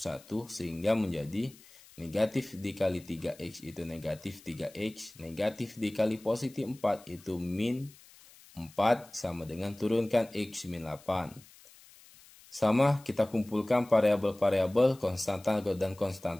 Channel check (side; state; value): left; noise; hiss, 24 dB below the sound